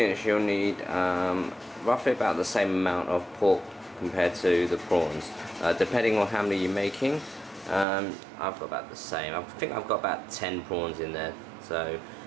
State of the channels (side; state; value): left; drops out; at 7.9 s